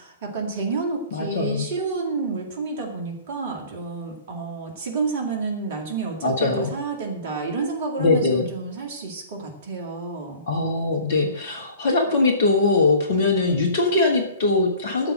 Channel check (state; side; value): inverted; both; correlation -0.47